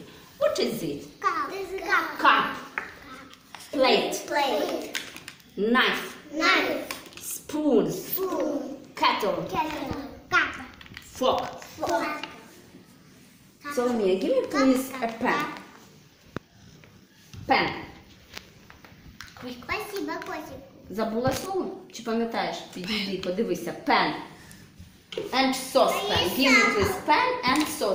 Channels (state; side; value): identical; both; correlation 1.00